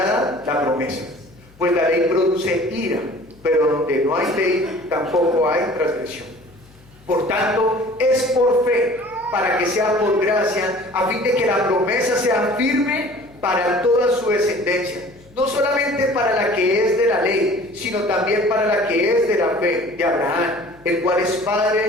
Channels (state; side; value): noise; left; hum, 27 dB below the sound